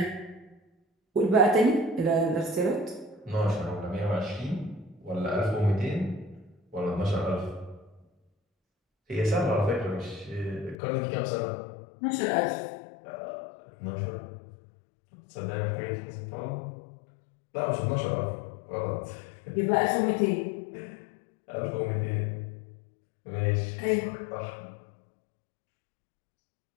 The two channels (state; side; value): drops out; right; at 10.8 s